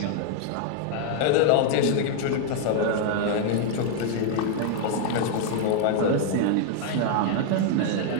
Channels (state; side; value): different; both; correlation 0.00